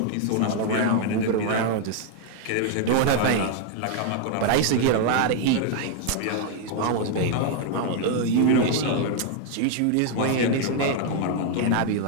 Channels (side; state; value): both; different; correlation 0.00